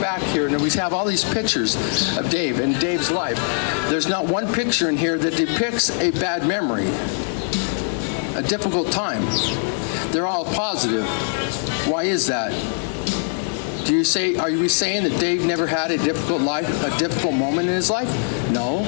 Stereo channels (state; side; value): silent; right; 57 dB below the other